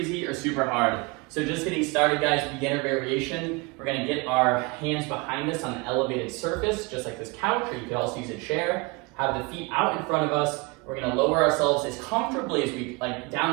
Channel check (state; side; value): quieter; left; 27.1 dB